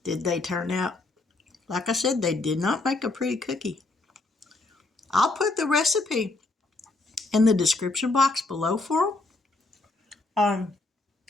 Did they turn out? Like I said, they did not make a pretty cookie. I'll put the recipe in the description box below for them.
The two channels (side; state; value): right; quieter; 3.2 dB